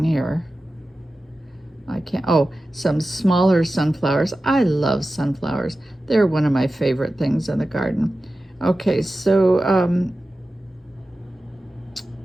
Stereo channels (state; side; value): normal; both; correlation 0.94